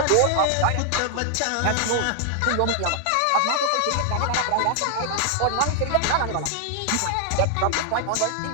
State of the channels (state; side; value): different; both; correlation 0.00